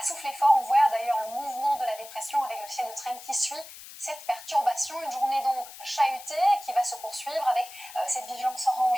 souffler fort. On voit d'ailleurs le mouvement de la dépression avec le ciel de traîne qui suit cette perturbation. Une journée donc chahutée qui va se poursuivre avec cette vigilance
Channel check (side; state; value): left; noise; hiss, 15 dB below the sound